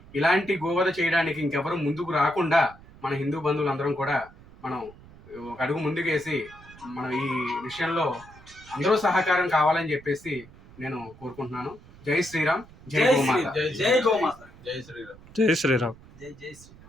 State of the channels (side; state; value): right; noise; rumble, 22 dB below the sound